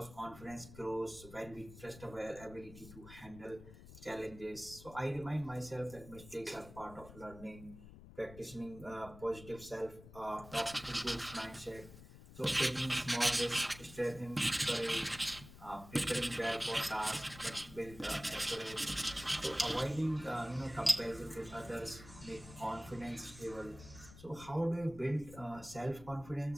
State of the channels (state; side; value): noise; left; rumble, 16 dB below the sound